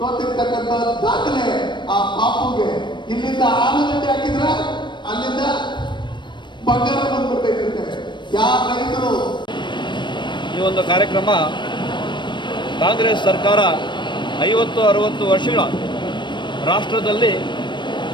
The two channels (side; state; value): right; late; 0.22 ms